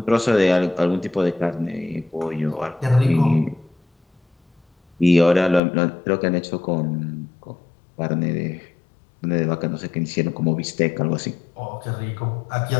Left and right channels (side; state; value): right; drops out; at 5.6 s